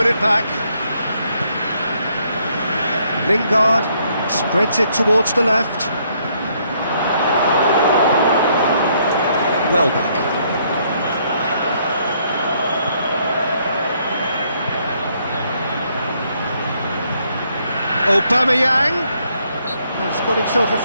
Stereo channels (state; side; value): inverted; both; correlation -0.70